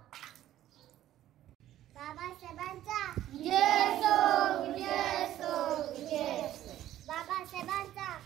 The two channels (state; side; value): quieter; left; 13.0 dB